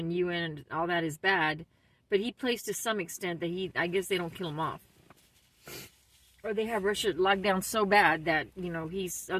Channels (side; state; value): both; identical; correlation 1.00